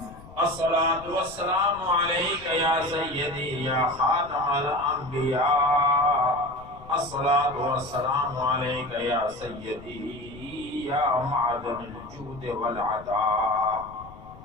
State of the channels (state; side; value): noise; left; rumble, 18 dB below the sound